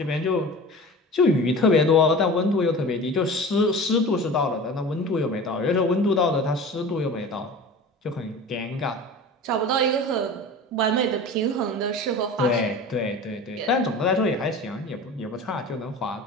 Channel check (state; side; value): normal; both; correlation 0.36